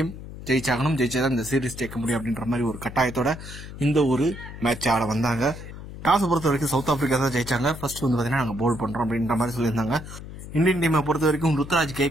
ஜெயிச்சாகணும். ஜெயிச்சாதான் இந்த சீரீஸ் ஜெயிக்க முடியும் அப்படின்ற மாதிரி ஒரு கட்டாயத்தோட இந்த ஒரு மேட்ச் ஆட வந்தாங்க. டாஸை பொறுத்த வரைக்கும் சவுத் ஆப்பிரிக்கா தான் ஜெயிச்சாங்க. ஃபர்ஸ்ட் வந்து பார்த்தீங்கன்னா நாங்கள் போல் பண்றோம் அப்படின்ற மாதிரி சொல்லியிருந்தாங்க. இந்தியன் டீமை பொறுத்த வரைக்கும் ருத்ராஜ்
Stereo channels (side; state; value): left; noise; hum, 12 dB below the sound